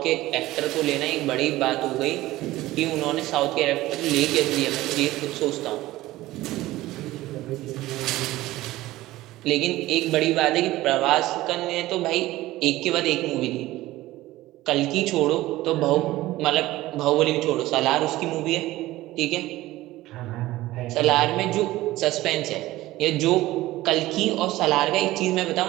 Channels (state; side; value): quieter; left; 17.0 dB